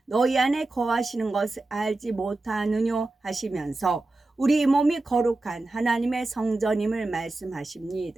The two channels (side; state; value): left; quieter; 3.0 dB